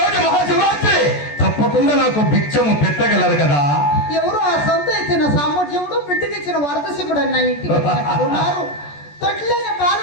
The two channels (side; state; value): right; late; 14 ms